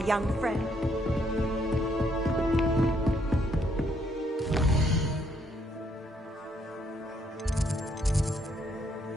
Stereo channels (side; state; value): both; normal; correlation 0.71